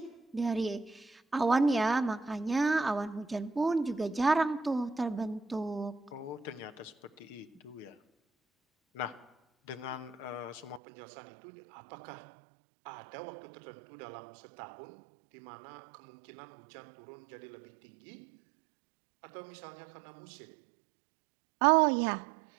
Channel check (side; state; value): left; drops out; at 10.8 s